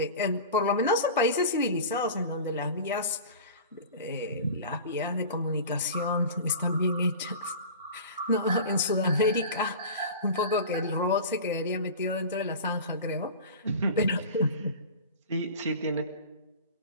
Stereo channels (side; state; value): both; inverted; correlation -0.35